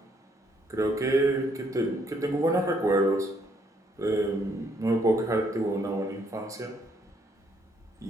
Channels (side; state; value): both; normal; correlation 0.70